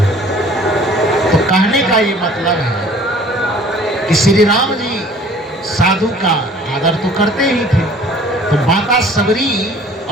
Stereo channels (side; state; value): both; normal; correlation 0.52